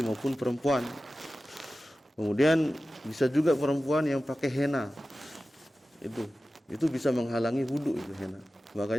maupun perempuan. Kemudian bisa juga perempuan yang pakai henna. Itu bisa menghalangi wudu itu henna.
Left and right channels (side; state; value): both; normal; correlation 0.95